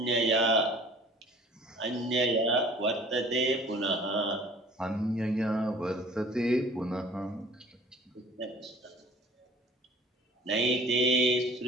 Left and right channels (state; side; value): normal; both; correlation 0.49